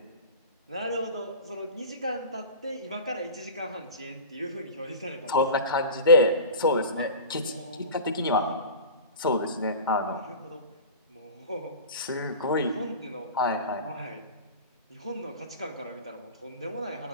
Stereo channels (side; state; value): both; inverted; correlation -0.34